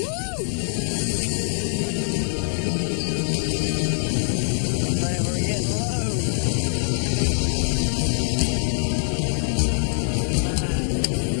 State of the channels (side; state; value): right; silent; 63 dB below the other